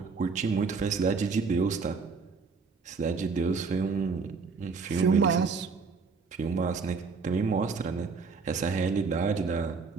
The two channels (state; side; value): quieter; left; 4.9 dB